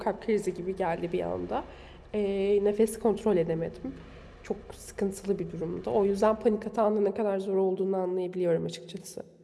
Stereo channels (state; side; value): identical; both; correlation 1.00